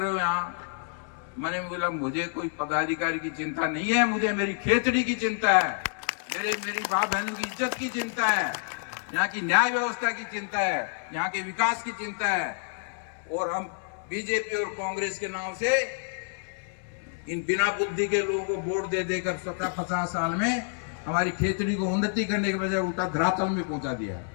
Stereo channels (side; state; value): right; silent; 59 dB below the other